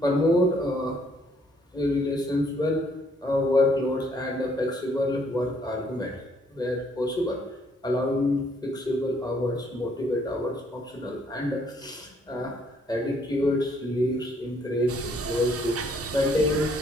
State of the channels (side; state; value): both; normal; correlation 0.67